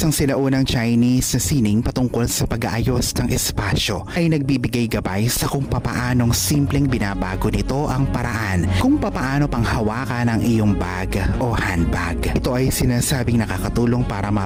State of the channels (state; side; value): identical; both; correlation 1.00